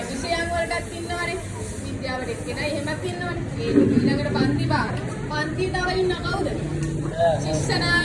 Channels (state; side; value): identical; both; correlation 1.00